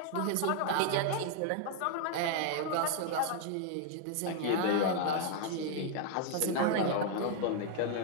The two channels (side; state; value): both; different; correlation 0.00